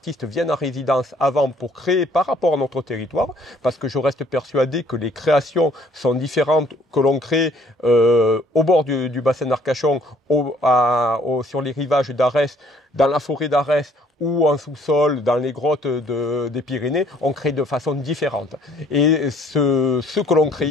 viennent en résidence avant pour créer par rapport à notre territoire, parce que je reste persuadé que les créations sont différentes que l'on crée au bord du bassin d'Arcachon, sur les rivages d'Arès, dans la forêt d'Arès, ou en sous-sol, dans les grottes des Pyrénées, on crée de façon différente. Et ce que l'on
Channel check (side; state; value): both; normal; correlation 0.60